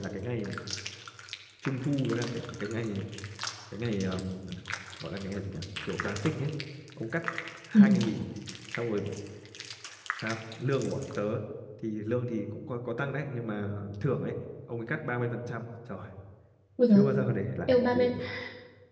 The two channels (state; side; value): identical; both; correlation 1.00